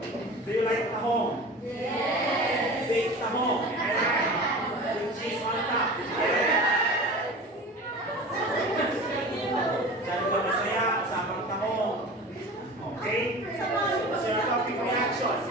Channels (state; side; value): normal; both; correlation 0.36